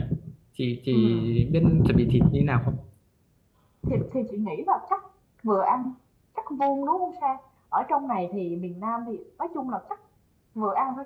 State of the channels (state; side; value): identical; both; correlation 1.00